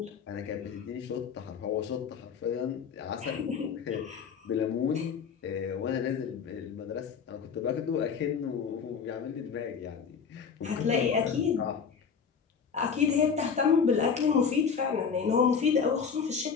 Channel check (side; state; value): right; quieter; 6.3 dB